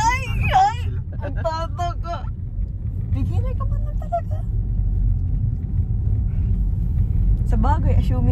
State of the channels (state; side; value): identical; both; correlation 1.00